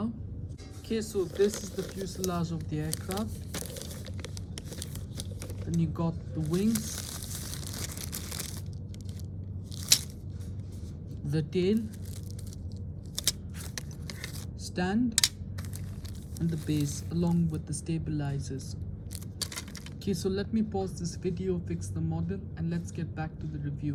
Okay, so this is the fuselage of the aircraft. Then you got the wings, the tail, stand, and the base along with the stabilizers. Okay, so let me pause this video, fix the model, and let's get back to the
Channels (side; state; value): both; identical; correlation 1.00